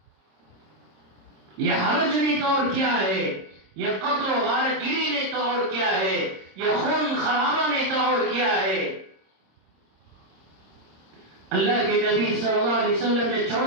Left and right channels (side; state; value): left; late; 26 ms